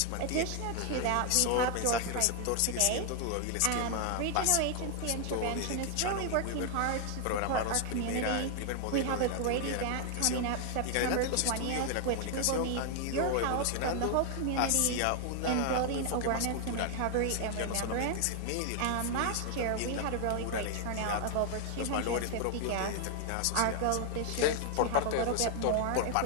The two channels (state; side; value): different; both; correlation 0.00